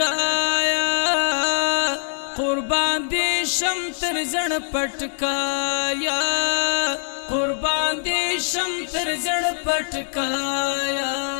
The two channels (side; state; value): right; silent; digital silence